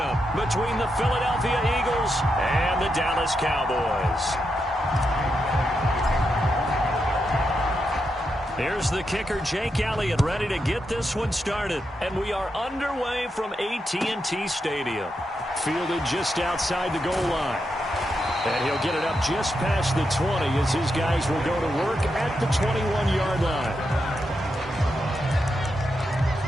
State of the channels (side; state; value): both; normal; correlation 0.85